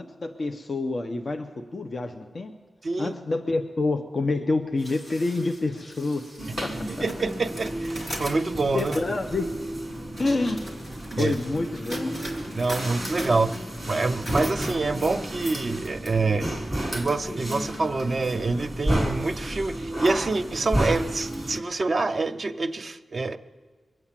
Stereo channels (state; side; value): normal; both; correlation 0.92